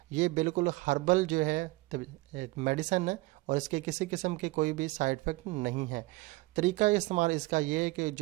ये बिल्कुल हर्बल जो है मेडिसन है और इसके किसी किस्म के कोई भी साइड इफ़ेक्ट नहीं है। तरीका इस्तेमाल इसका ये है कि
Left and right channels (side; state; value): left; quieter; 21.9 dB